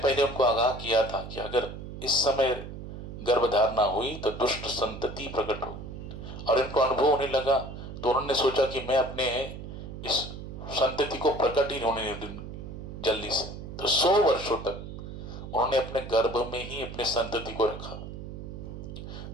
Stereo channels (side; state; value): right; noise; hum, 10 dB below the sound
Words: उनको आगाह किया था कि अगर इस समय गर्भधारणा हुई तो दुष्ट संतति प्रकट हो, और इनको अनुभव होने लगा। तो उन्होंने सोचा कि मैं अपने इस संतति को प्रकट ही होने नहीं दूंगी जल्दी से। तो 100 वर्षों तक उन्होंने अपने गर्भ में ही अपने संतति को रखा।